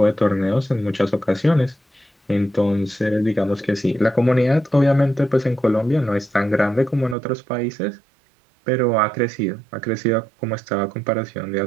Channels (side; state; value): left; drops out; at 7.2 s